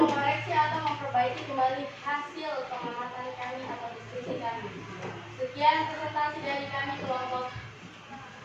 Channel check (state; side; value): identical; both; correlation 1.00